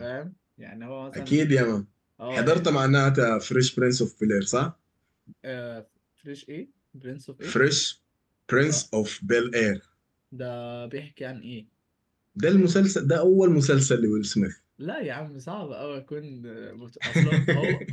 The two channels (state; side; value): identical; both; correlation 1.00